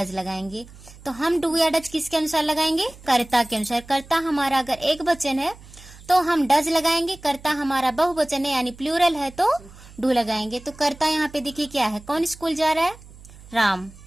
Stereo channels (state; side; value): noise; right; hum, 20 dB below the sound